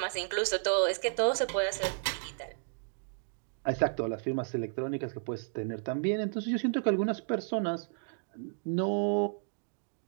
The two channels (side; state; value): left; silent; digital silence